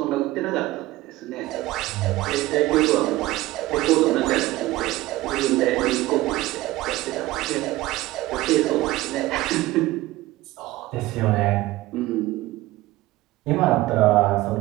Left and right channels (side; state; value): left; quieter; 17.9 dB